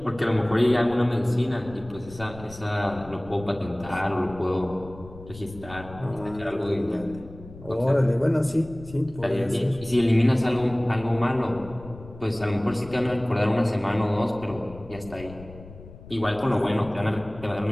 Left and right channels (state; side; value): noise; left; rumble, 17 dB below the sound